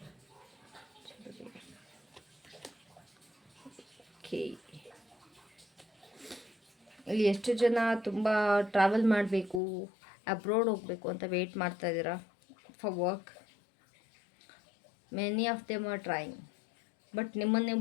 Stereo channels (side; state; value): right; drops out; at 9.6 s